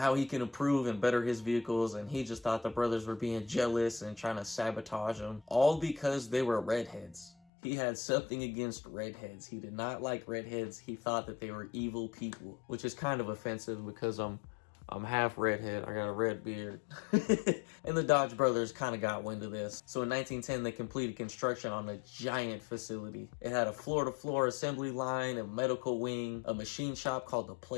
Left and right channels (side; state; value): right; drops out; at 7.3 s